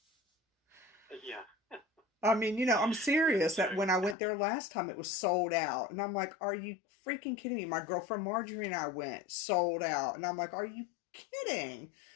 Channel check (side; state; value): right; drops out; at 4.2 s